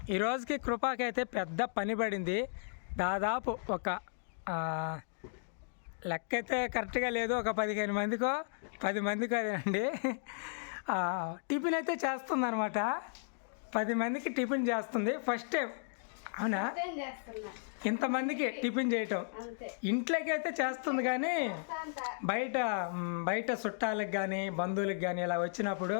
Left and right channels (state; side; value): silent; right; digital silence